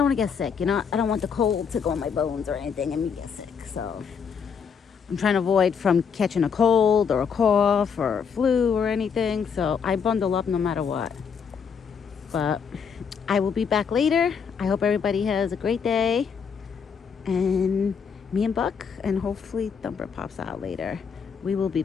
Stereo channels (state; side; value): quieter; right; 6.5 dB